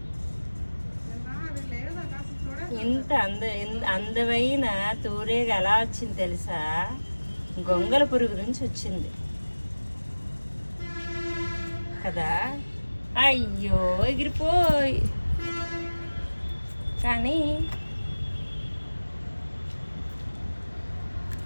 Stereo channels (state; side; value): inverted; both; correlation -1.00